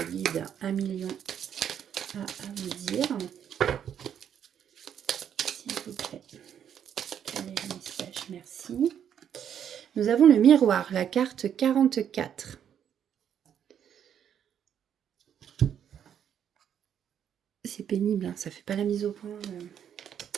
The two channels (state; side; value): quieter; left; 9.0 dB